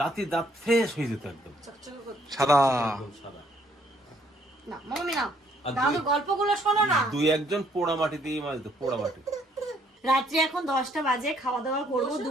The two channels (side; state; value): both; normal; correlation 0.67